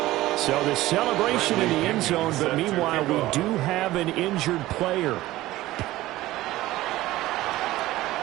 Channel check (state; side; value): quieter; left; 16.7 dB